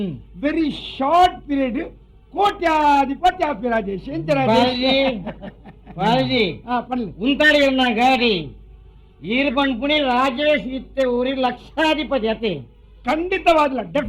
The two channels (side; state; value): both; identical; correlation 1.00